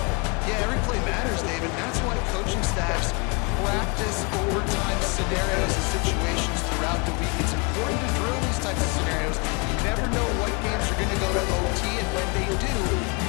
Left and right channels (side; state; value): right; quieter; 31.3 dB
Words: Yeah, every play matters, David. That's why coaching staffs practice overtime scenarios and situations throughout the week. It's important to drill these types of scenarios. You never know what games are going to go to OT, and when they do, you